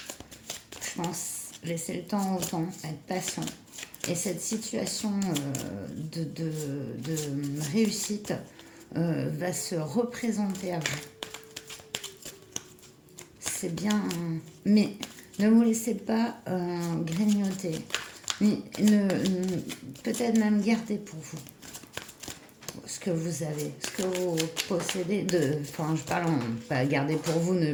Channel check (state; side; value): identical; both; correlation 1.00